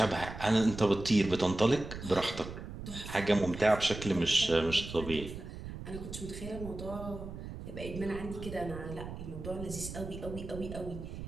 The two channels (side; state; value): right; noise; rumble, 10 dB below the sound